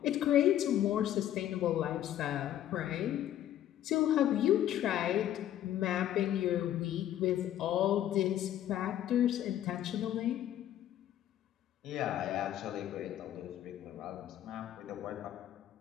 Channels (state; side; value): quieter; right; 11.8 dB